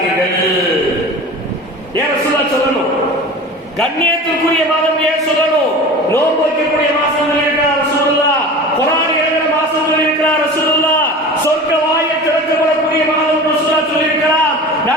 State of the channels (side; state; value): both; normal; correlation 0.35